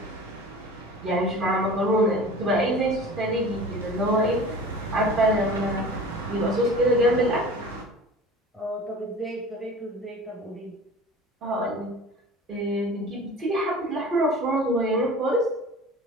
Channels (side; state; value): both; normal; correlation 0.40